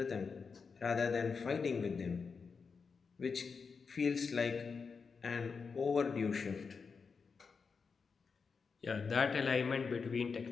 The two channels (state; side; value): quieter; right; 5.3 dB